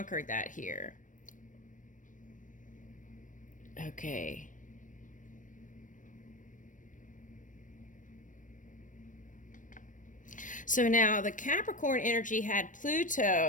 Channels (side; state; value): right; late; 0.38 ms